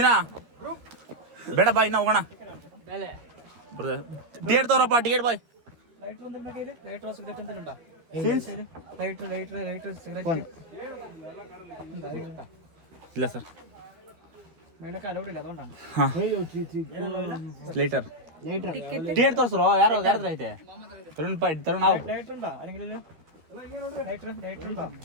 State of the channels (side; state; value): left; late; 12 ms